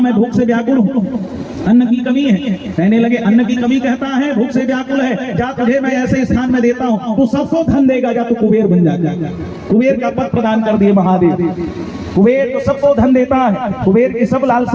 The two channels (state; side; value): identical; both; correlation 1.00